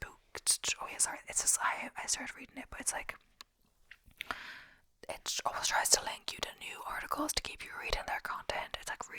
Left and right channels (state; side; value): identical; both; correlation 1.00